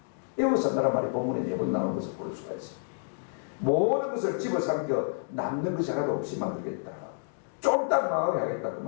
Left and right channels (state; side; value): silent; right; digital silence